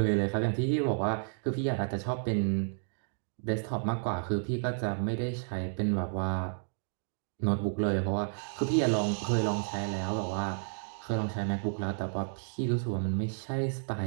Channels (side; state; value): left; silent; digital silence